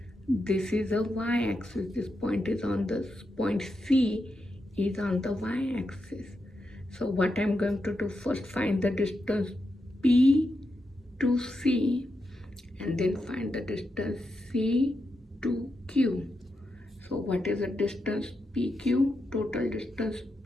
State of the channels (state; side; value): normal; both; correlation 0.86